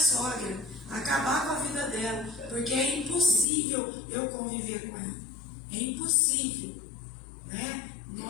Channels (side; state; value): right; drops out; at 3.5 s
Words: acabar com a vida dela, porque é impossível eu conviver com ela, é impossível, né?